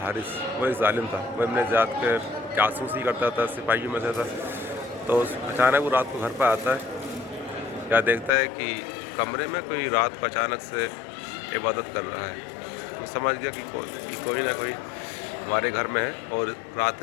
حارث، وہ ایک ظالم تھا، وہ ابن زیاد کے جاسوسی کرتا تھا، سپاہیوں میں سے تھا. تو اچانک وہ رات کو گھر پہ آتا ہے، کیا دیکھتا ہے کہ کمرے میں کوئی رات کو اچانک سے عبادت کر رہا ہے. وہ سمجھ گیا کہ کوئی نہ کوئی ہمارے گھر میں ہے اور رات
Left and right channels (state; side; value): drops out; right; at 8.3 s